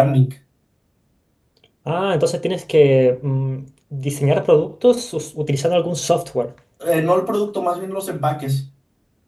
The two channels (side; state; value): both; identical; correlation 1.00